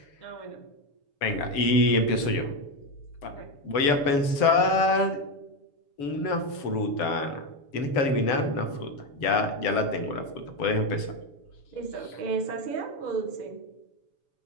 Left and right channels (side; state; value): right; late; 7.0 ms